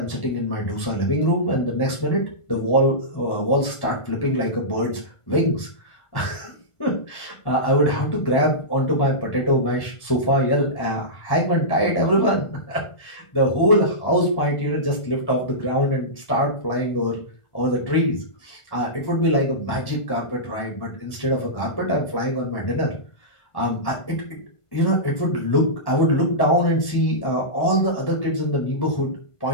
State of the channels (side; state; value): right; late; 1.5 ms